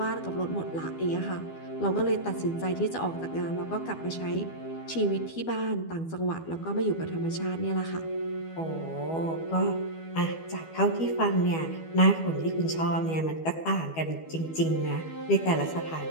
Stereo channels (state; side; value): late; right; 12 ms